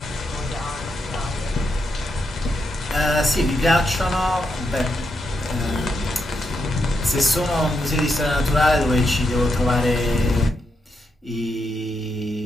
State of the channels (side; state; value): both; normal; correlation 0.82